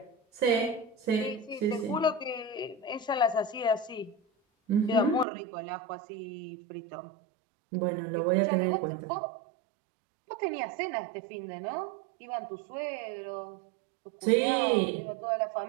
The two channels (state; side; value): drops out; left; at 5.2 s